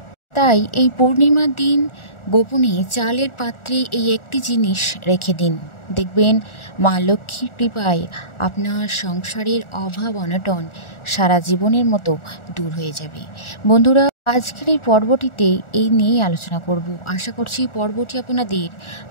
তাই এই পূর্ণিমার দিন গোপনে চালের পাত্রে এই একটি জিনিস রেখে দিন, দেখবেন মা লক্ষ্মীর কৃপায় আপনার সংসারের অভাব অনটন সারা জীবনের মতো দূর হয়ে যাবে। বন্ধুরা, আজকের এই পর্বটিতে এই নিয়েই আলোচনা করব। আশা করছি পর্বটি আপনাদের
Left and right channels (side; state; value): right; late; 1.4 ms